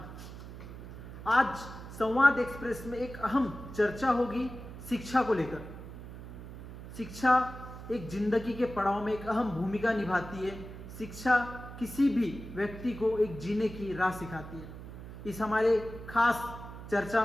आज संवाद एक्सप्रेस में एक अहम चर्चा होगी शिक्षा को लेकर। शिक्षा एक जिंदगी के पड़ाव में एक अहम भूमिका निभाती है। शिक्षा किसी भी व्यक्ति को एक जीने की राह सिखाती है। इस हमारे खास चर्चा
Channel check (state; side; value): noise; right; hum, 12 dB below the sound